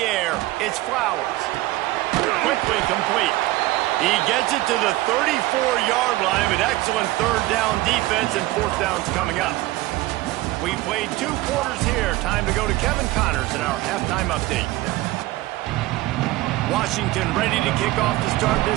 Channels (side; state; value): left; quieter; 18.1 dB